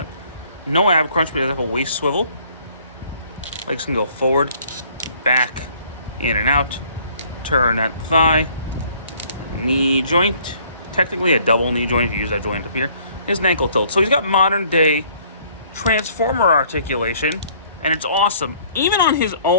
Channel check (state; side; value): inverted; both; correlation -0.59